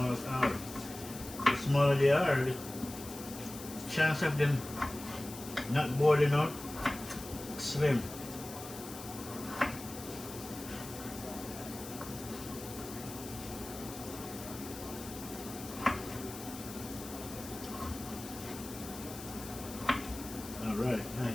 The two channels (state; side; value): noise; left; hiss, 12 dB below the sound